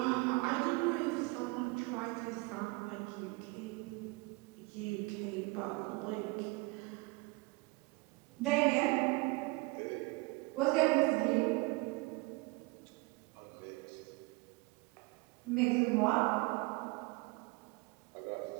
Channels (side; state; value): left; quieter; 26.1 dB